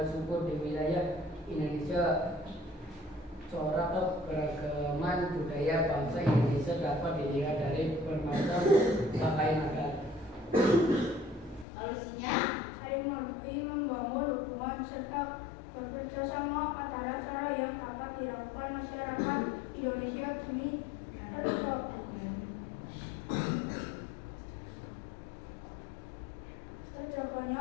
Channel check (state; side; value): drops out; right; at 11.7 s